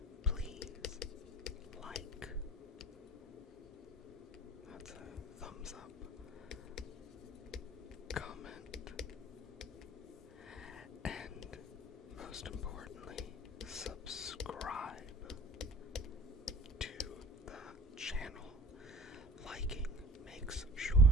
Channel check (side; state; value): both; normal; correlation 0.42